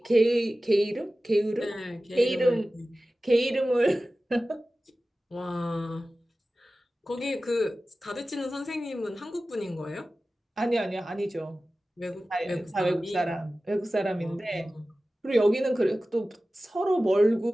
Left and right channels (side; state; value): both; normal; correlation 0.96